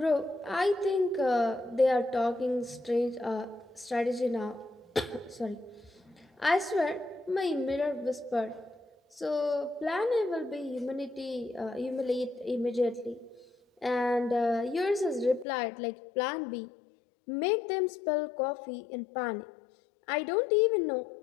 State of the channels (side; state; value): right; drops out; at 15.5 s